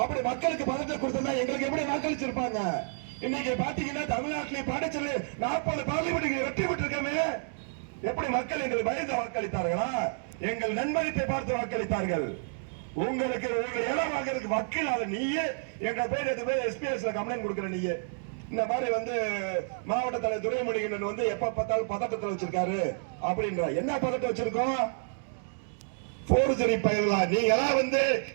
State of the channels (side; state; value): left; silent; digital silence